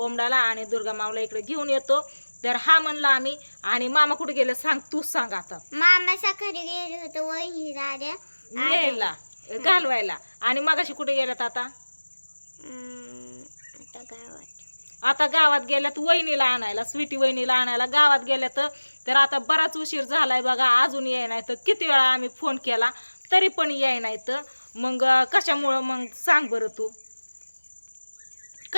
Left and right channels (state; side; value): inverted; both; correlation -1.00